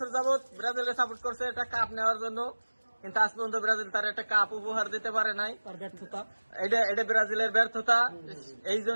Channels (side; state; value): both; inverted; correlation -1.00